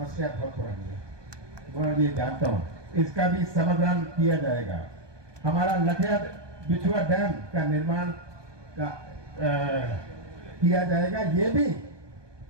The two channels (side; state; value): left; late; 1.2 ms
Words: बहुत पुरानी है, मैं ये जानता हूँ। इसका भी समाधान किया जाएगा। हमारा लखिया बिछुआ डैम का निर्माण का किया जाएगा। ये भी